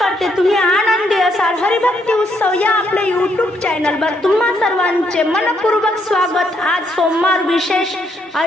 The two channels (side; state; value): both; normal; correlation 0.74